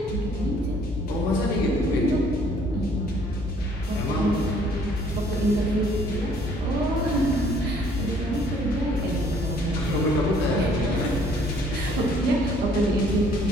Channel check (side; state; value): both; normal; correlation 0.60